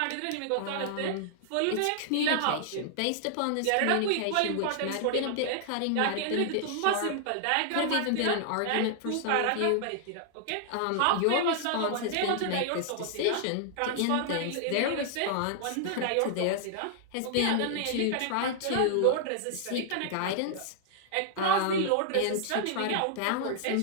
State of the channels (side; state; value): both; different; correlation -0.01